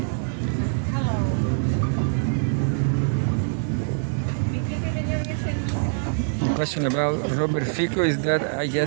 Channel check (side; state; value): left; silent; digital silence